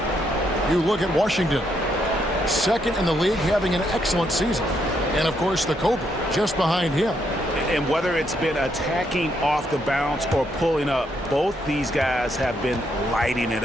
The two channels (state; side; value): normal; both; correlation 0.76